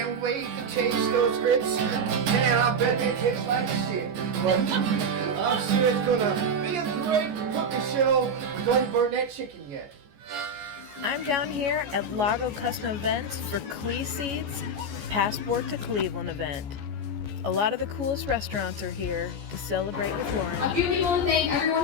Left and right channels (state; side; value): late; left; 14 ms